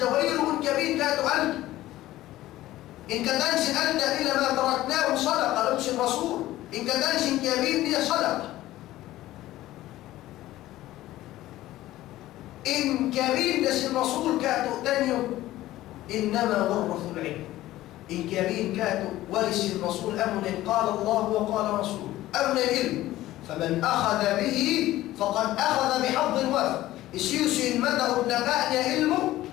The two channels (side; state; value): right; quieter; 15.5 dB